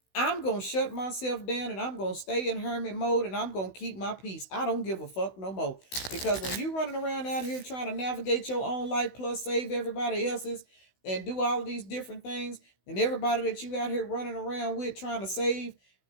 I'm going to shut myself down and I'm going to stay in hermit mode and I'm going to keep my peace. I don't give a fuck no more. Because when you running around out here trying to navigate your own life plus save everybody else's and do all of these different things, and everybody that you out here running around with trying to save,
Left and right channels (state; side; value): late; right; 16 ms